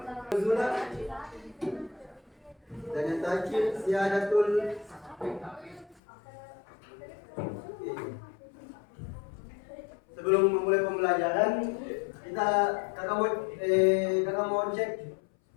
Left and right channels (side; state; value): right; drops out; at 6.0 s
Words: dan yang terakhir Siadatul. Sebelum memulai pembelajaran, kakak mau cek